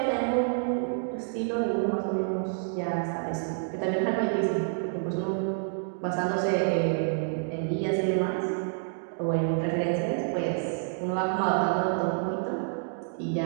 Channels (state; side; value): silent; left; digital silence